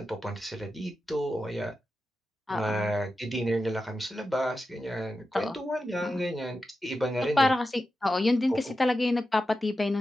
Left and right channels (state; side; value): normal; both; correlation 0.91